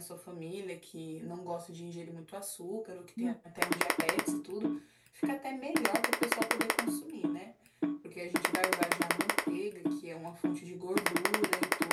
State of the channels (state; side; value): identical; both; correlation 1.00